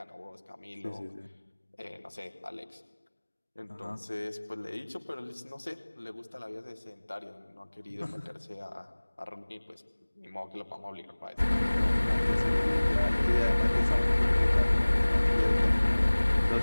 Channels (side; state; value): both; inverted; correlation -1.00